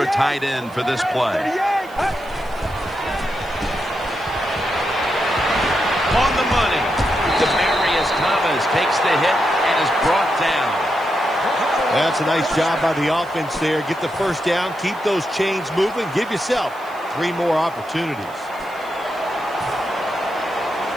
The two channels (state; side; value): noise; right; hiss, 25 dB below the sound